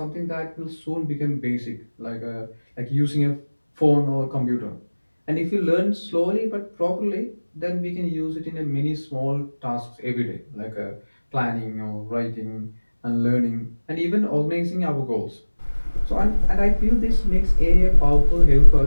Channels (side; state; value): both; inverted; correlation -1.00